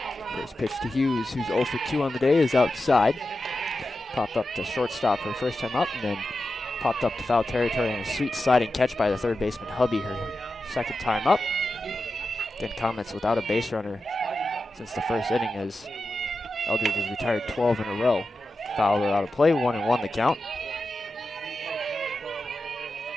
First pitch to Hughes, who's 0 for 2 on the day, is outside. Popped up to shortstop her first time up, and then popped up to foul territory and a sweet sliding catch by the third baseman Hubby her second time up. Again, Comets without a base runner since the first inning, as Eldridge has retired 12 in a row. Foul out of play, 1-1 the count.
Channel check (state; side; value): normal; both; correlation 0.91